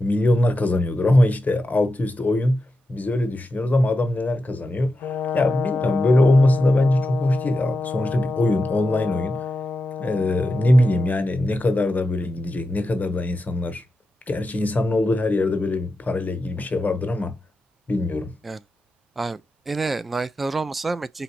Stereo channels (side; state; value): both; normal; correlation 0.89